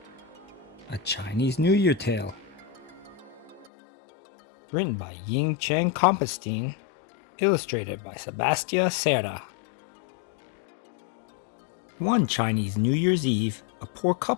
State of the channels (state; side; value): drops out; right; at 3.7 s